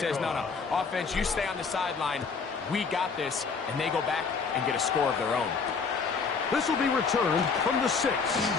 no, offense, you stay on the sideline. We got this, and they go back and get a score of their own. This will be returned from the 6.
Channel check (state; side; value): quieter; right; 5.1 dB